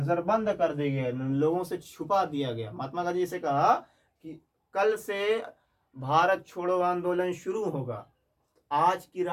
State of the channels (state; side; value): identical; both; correlation 1.00